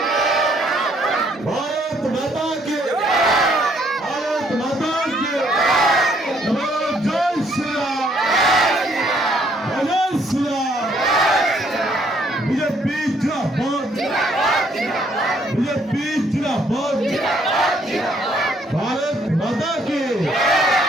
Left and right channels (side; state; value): both; normal; correlation 0.67